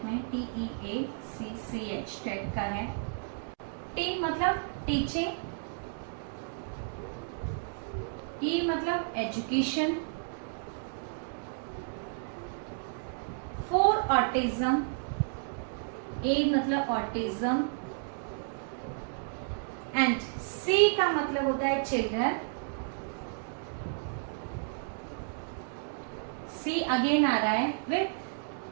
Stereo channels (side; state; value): left; silent; digital silence